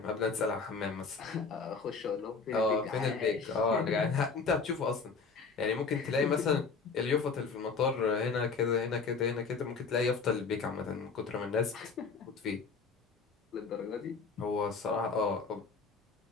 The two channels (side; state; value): right; quieter; 4.8 dB